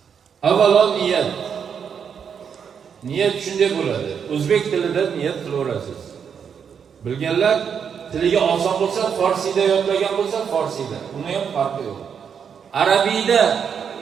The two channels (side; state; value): left; quieter; 7.2 dB